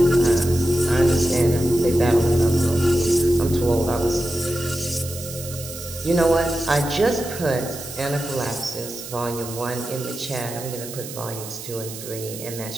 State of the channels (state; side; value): noise; right; hiss, 11 dB below the sound